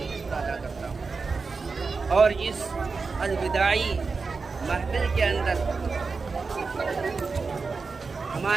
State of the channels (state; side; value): quieter; left; 4.5 dB